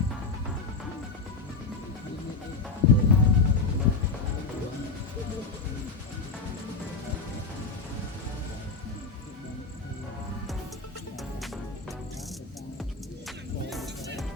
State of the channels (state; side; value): quieter; right; 4.1 dB